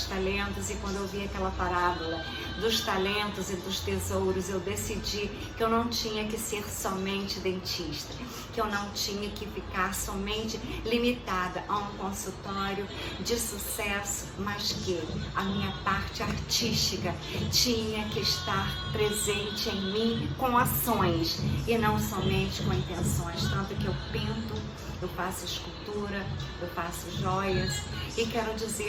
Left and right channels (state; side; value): identical; both; correlation 1.00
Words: talentos e quando eu vi aquela parábola dos talentos e dos tesouros, eu decidi que eu não tinha que ser somente dentista, que eu não tinha que ficar somente limitada a um consultório de sucesso, mas que a minha parte artística tinha que estar presente em mim com ações e não somente com intenções. Tanto que eu pinto, eu faço escultura, eu faço joias e quero